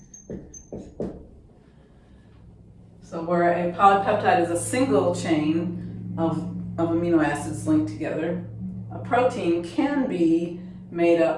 So where a polypeptide is a single chain of amino acids linked together, a protein can be made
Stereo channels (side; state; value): both; identical; correlation 1.00